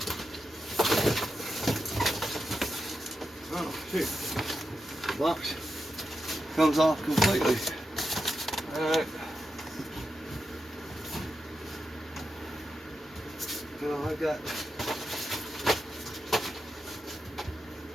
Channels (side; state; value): both; normal; correlation 0.88